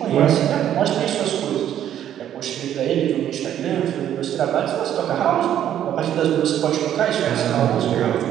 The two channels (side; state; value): left; quieter; 10.8 dB